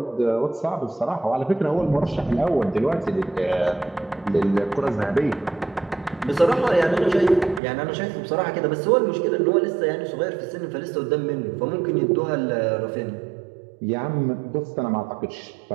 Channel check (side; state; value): left; drops out; at 7.6 s